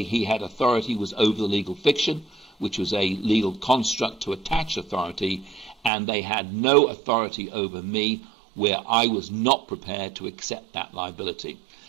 he had authority was over the legal fiction, which was a legal construct to attach authority, and they had no authority over me where I was not prepared to accept that liability.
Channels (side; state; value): left; drops out; at 5.9 s